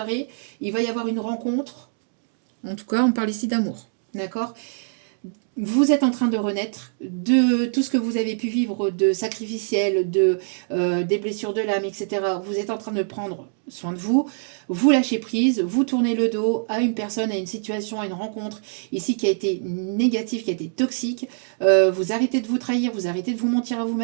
il va y avoir une rencontre. En tout cas, on parle ici d'amour. D'accord ? Vous êtes en train de renaître de tout ce que vous avez pu vivre de sacrificiel, des blessures de l'âme, etc. Vous êtes en train de prendre soin de vous, vous lâchez prise, vous tournez le dos à une personne, à une situation, à une rencontre ici qui a été négative, qui a été toxique. Vous arrêtez de vous trahir, vous arrêtez de vous mentir à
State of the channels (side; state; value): left; silent; digital silence